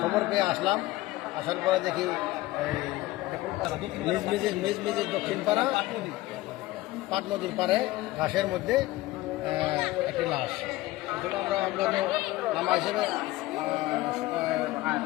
খবর পেয়ে আসলাম, আসার পরে দেখি মেজমেজের দক্ষিণ পাড়া পাট নদীর পাড়ে ঘাসের মধ্যে একটি লাশ। আমরা নামা হিসেবে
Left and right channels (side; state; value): right; quieter; 17.9 dB